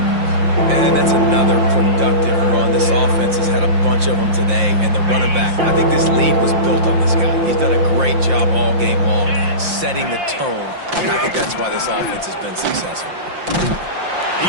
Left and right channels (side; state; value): left; late; 5.7 ms